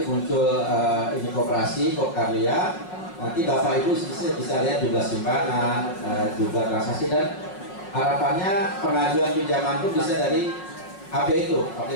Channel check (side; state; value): right; late; 5.5 ms